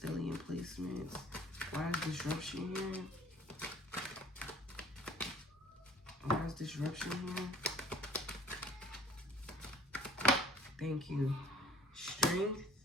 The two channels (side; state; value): both; normal; correlation 0.52